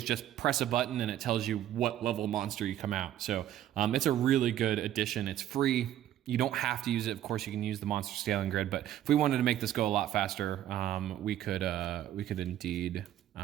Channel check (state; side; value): quieter; left; 11.9 dB